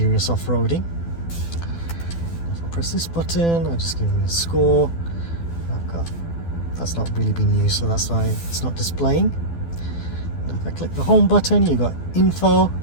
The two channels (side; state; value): right; late; 12 ms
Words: off-roading. If I press this button, I'll just give me a score. That's not really been used, so that's why it's not displaying. And if I click the home button, you've got info,